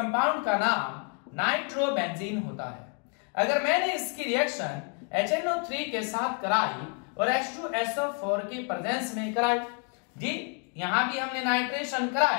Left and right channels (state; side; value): quieter; right; 38.8 dB